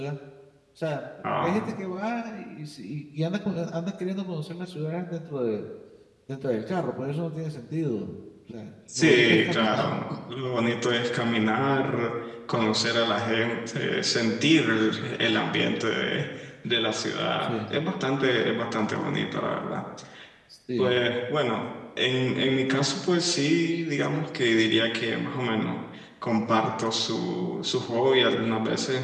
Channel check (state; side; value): identical; both; correlation 1.00